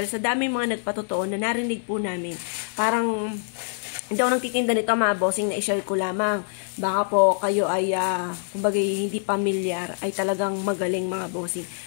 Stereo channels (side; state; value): right; silent; 62 dB below the other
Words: sa dami mga nagpatotoo na narinig po namin, parang hindi ako nagtitinda nito mga bossing, na i-share ko lamang. Baka po kayo ay, kumbaga hindi pamilyar, ay talagang magaling mga bossing.